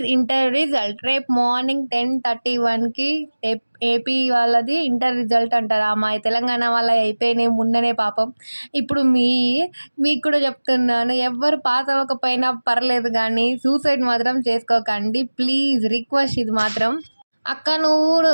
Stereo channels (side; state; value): both; inverted; correlation -1.00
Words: inter result రేపు morning 10:31కి AP వాళ్ళది inter result అంటారా మా తెలంగాణ వాళ్ళ అయిపోయినాయి మొన్ననే పాపం. ఇప్పుడు మీకు కూడా చెప్తున్నాను, ఎవ్వరు పాస్ అవ్వకపోయినా పర్లేదు కానీ సూసైడ్ మాత్రం చేసుకోకండి ప్లీజ్, రిక్వెస్ట్ ఇది మాత్రం. అక్క